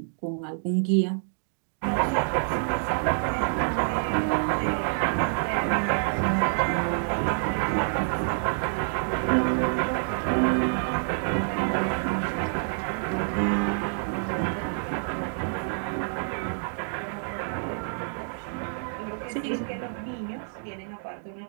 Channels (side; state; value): left; silent; digital silence